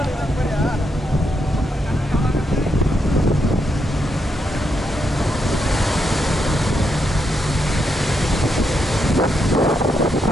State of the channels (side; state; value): both; normal; correlation 0.81